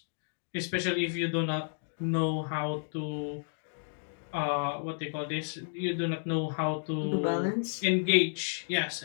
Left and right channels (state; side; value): silent; right; digital silence